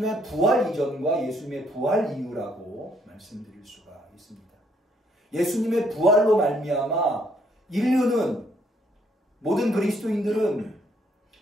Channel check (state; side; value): normal; both; correlation 0.69